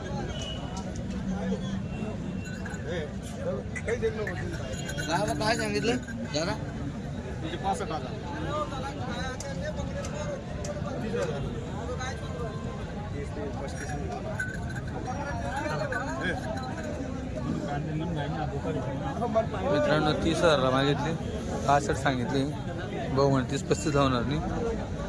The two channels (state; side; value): identical; both; correlation 1.00